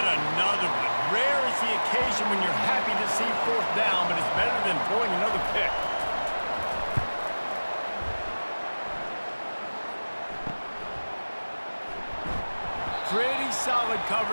another one. Rare is the occasion when you're happy to see 4th down, but it's better than throwing another pick. Pretty solid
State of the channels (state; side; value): inverted; both; correlation -1.00